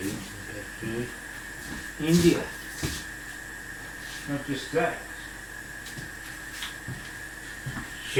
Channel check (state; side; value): identical; both; correlation 1.00